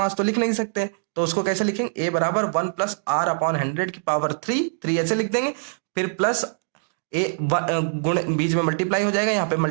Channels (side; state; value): left; silent; digital silence